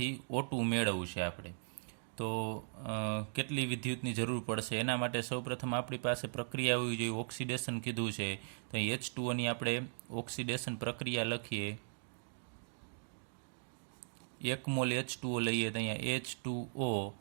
O2 મેળવવું છે આપણે, તો કેટલી વિદ્યુતની જરૂર પડશે. એના માટે સૌપ્રથમ આપણી પાસે પ્રક્રિયા હોવી જોઈએ. ઓક્સિડેશન કીધું છે, તો H2Oની આપણે ઓક્સિડેશન પ્રક્રિયા લખીએ. 1 મોલ H2O લઈએ તો અહીંયા H2O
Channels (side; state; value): left; silent; digital silence